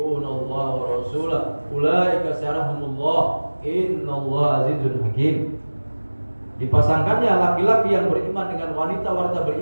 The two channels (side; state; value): both; inverted; correlation -1.00